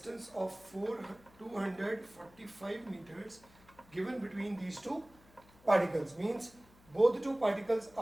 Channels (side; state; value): left; noise; hum, 26 dB below the sound